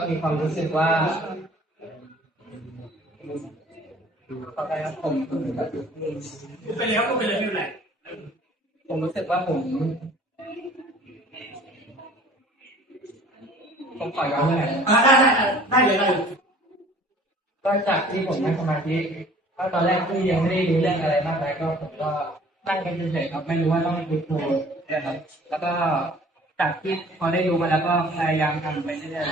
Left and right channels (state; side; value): normal; both; correlation 0.51